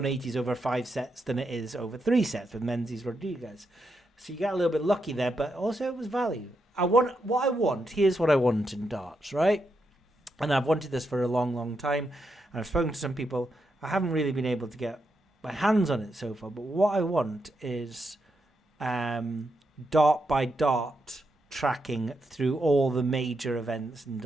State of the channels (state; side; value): normal; both; correlation 0.83